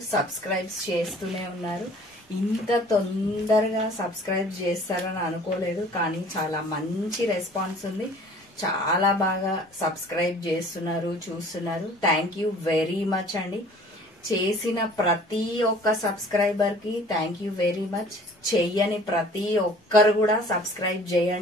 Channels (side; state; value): both; normal; correlation 0.50